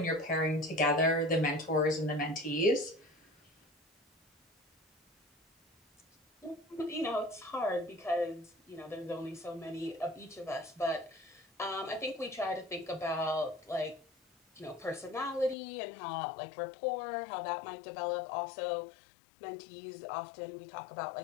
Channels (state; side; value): drops out; right; at 15.6 s